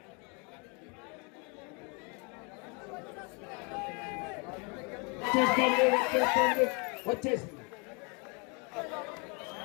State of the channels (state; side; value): quieter; right; 33.1 dB